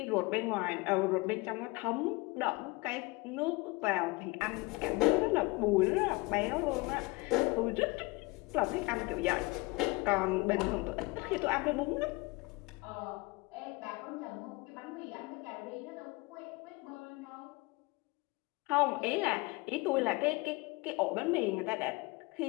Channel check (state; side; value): quieter; right; 24.1 dB